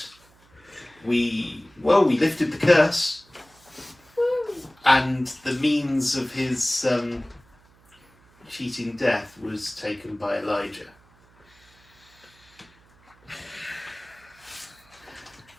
We lifted the curse, and the means of his cheating death was taken by Elijah.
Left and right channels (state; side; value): noise; right; hum, 30 dB below the sound